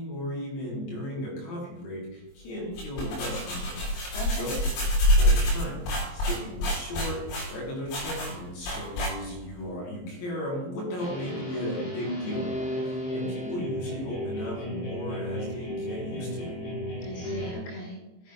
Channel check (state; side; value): late; right; 23 ms